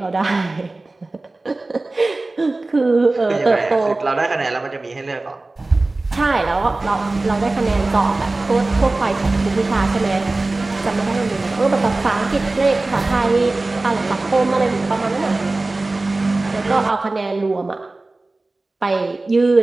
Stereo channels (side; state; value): left; quieter; 3.1 dB